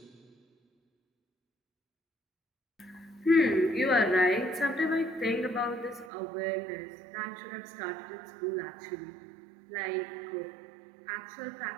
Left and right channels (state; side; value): drops out; left; at 6.1 s